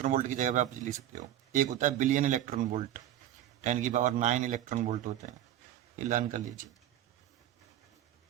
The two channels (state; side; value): quieter; left; 12.0 dB